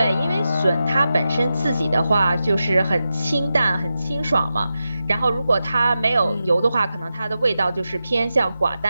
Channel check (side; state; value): both; inverted; correlation -0.90